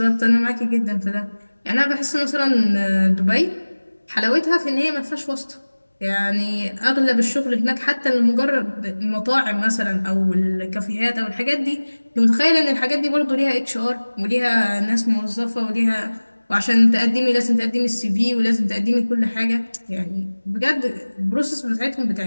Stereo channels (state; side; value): inverted; both; correlation -1.00